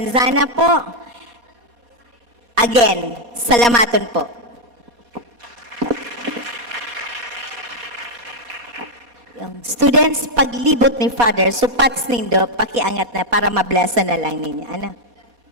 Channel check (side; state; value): left; late; 4.2 ms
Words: po. Again, salamaton po. Yung students, paglibot ni Father, supats nindo, pakiangat na para mablessa na lang ninyo. Ano?